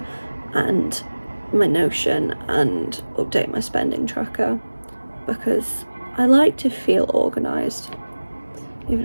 and my Notion and update my spending tracker, because I like to feel organised, even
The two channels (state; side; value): inverted; both; correlation -1.00